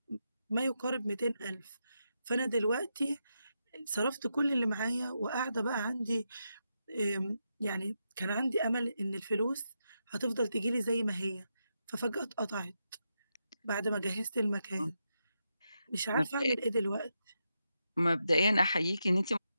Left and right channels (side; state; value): both; inverted; correlation -0.85